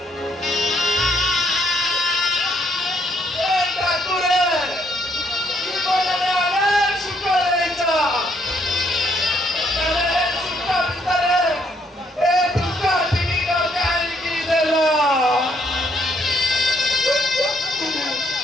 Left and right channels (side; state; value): both; normal; correlation 0.71